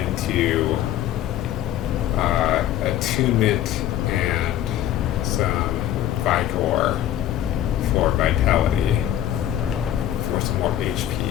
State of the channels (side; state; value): right; quieter; 12.0 dB